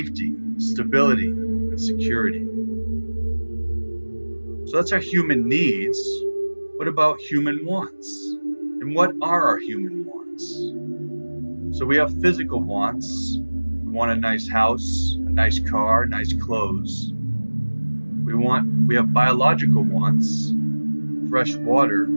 stability, and security. So that's our human needs. What about human wants? And what are our human wants? So we have physical wants. We want a nice house, a nice car, nice clothes. We have biological wants, fresh water,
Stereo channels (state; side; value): inverted; both; correlation -1.00